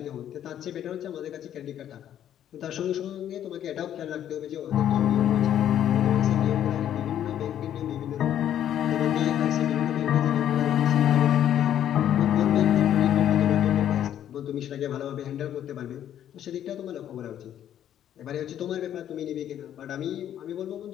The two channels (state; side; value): quieter; right; 10.7 dB